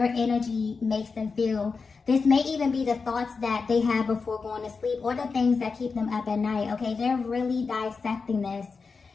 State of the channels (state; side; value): quieter; right; 4.8 dB